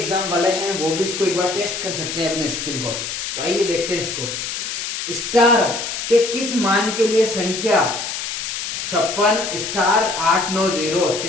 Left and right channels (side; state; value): left; noise; hiss, 5 dB below the sound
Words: वाले हैं वो भी इसको एक बार टेस्ट कर सकते हैं अपने स्किल को। तो आइए देखते हैं इसको। स्टार के किस मान के लिए संख्या 56 स्टार 890